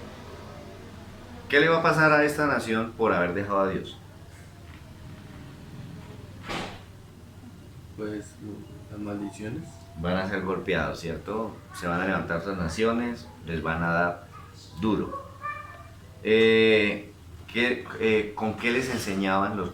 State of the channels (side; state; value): both; identical; correlation 1.00